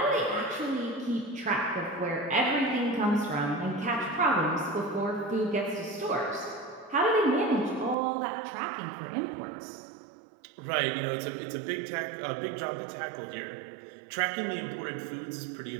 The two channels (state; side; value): drops out; left; at 8.0 s